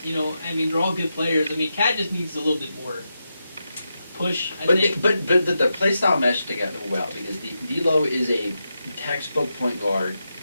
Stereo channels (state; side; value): inverted; both; correlation -0.87